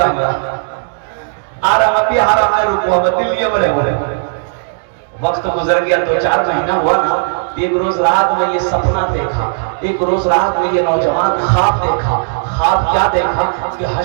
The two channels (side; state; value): left; silent; digital silence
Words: हमरा आराम बिहार में रुको हम दिल्ली में रहे। वक्त गुजर गया, 2-4 महीना हुआ ना। एक रोज रात में ये सपना देखा, एक रोज रात में ये नौजवान ख्वाब देखा। ख्वाब क्या देखा कि